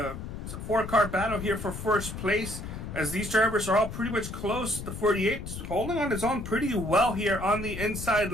a 4-car battle here for first place as these drivers are all pretty much close. The 48 holding on his own pretty well here on the inside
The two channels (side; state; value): left; noise; rumble, 8 dB below the sound